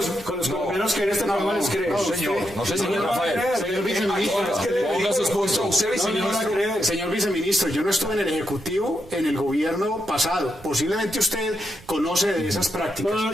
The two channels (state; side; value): noise; right; rumble, 23 dB below the sound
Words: colombianos que en este programa les creen? No sé, señor Rafael. Señor viceministro, Ponga sus puntos. señor viceministro, yo no estuve en el Ejecutivo en el gobierno pasado. Posiblemente usted conoce de esas prácticas.